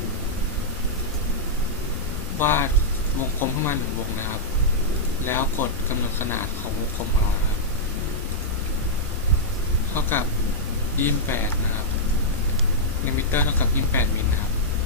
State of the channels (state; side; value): normal; both; correlation -0.09